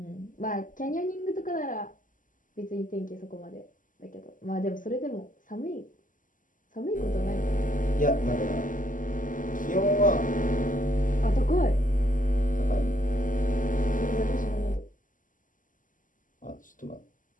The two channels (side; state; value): right; late; 0.38 ms